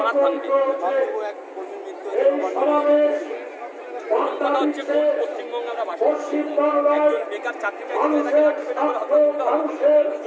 ভাঙবে। কথা হচ্ছে, কোন পশ্চিমবঙ্গে আমরা বাস করছি? একজন বেকার চাকরি চাইতে তাকে লাঠিপেটা করে হত্যা করতে হবে।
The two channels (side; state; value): both; identical; correlation 1.00